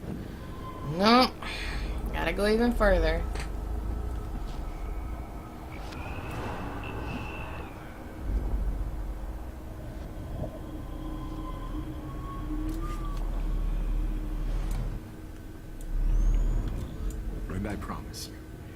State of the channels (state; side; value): identical; both; correlation 1.00